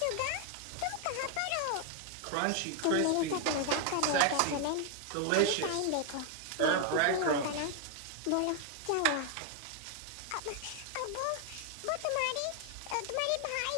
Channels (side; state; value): both; different; correlation 0.00